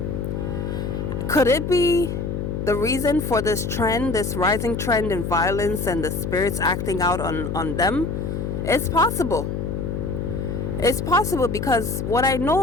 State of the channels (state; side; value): noise; left; hum, 3 dB below the sound